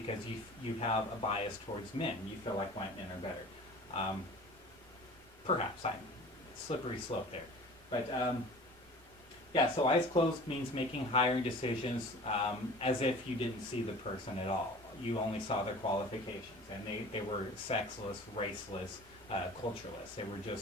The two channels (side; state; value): both; normal; correlation 0.42